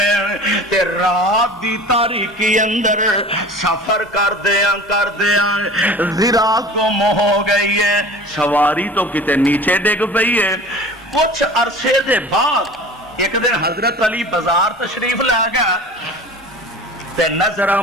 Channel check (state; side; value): normal; both; correlation 0.40